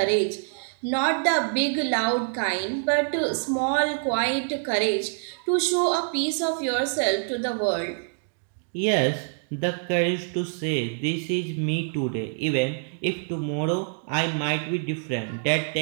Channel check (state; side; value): silent; left; digital silence